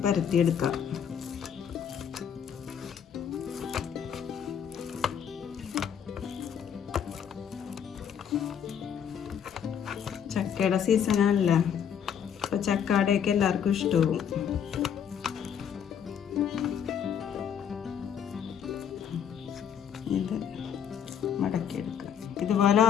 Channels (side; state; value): right; quieter; 8.3 dB